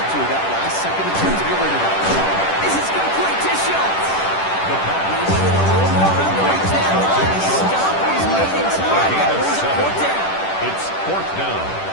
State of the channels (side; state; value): right; late; 10 ms